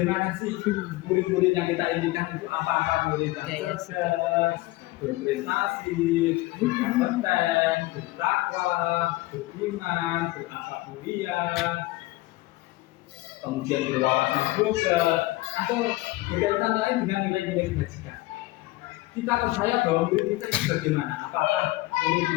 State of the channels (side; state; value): right; quieter; 19.6 dB